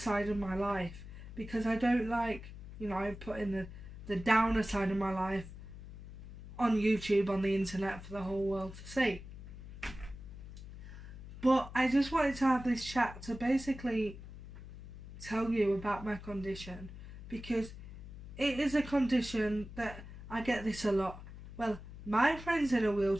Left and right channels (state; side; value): noise; left; hum, 13 dB below the sound